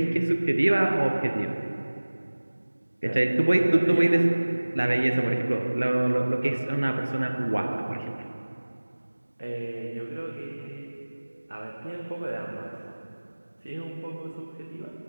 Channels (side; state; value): both; inverted; correlation -1.00